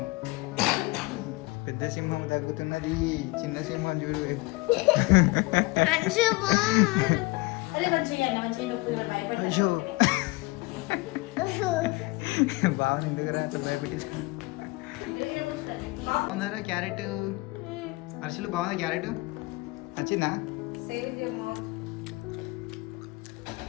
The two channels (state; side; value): quieter; right; 23.4 dB